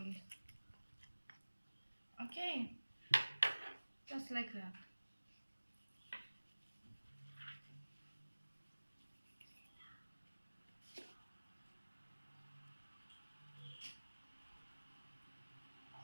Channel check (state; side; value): inverted; both; correlation -1.00